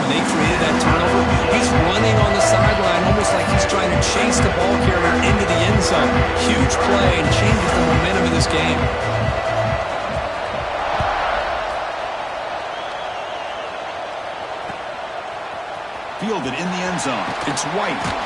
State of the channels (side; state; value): both; identical; correlation 1.00